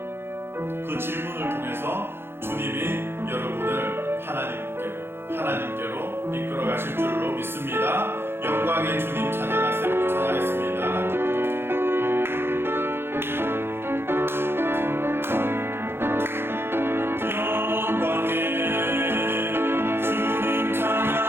그 질문을 통해서 주님이 여러분을 하나님께로 이끌어 가실 줄로 믿습니다. 영광의 주님 찬양하세요. 찬양했습니다. 주님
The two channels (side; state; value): left; late; 0.11 ms